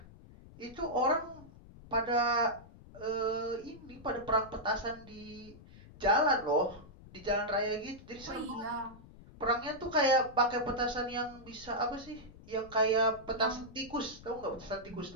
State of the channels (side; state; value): left; noise; rumble, 19 dB below the sound